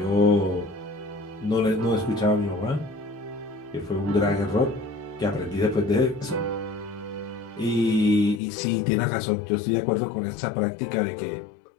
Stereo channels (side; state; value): right; drops out; at 8.4 s